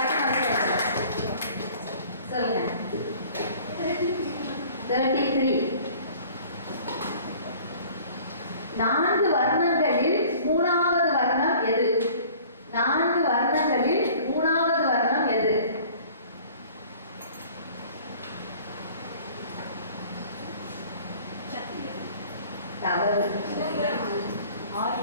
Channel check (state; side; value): inverted; both; correlation -0.49